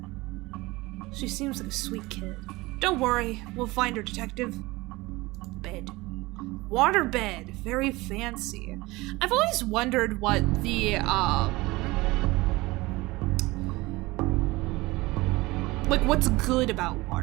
She seems like a sweet kid. Don't worry, we'll find her, detective. Bed. Water bed. Very fancy. I've always wondered what the, like, what's good about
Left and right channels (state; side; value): quieter; left; 21.3 dB